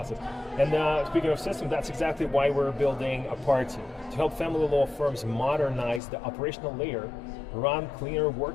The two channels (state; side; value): drops out; right; at 6.0 s